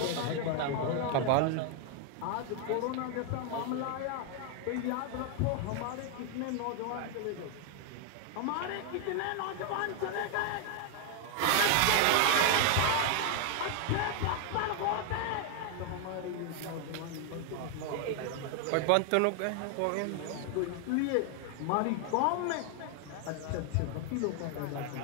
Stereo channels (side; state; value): both; different; correlation 0.00